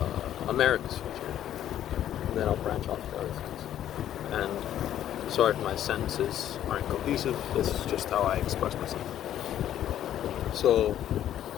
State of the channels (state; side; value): quieter; right; 11.3 dB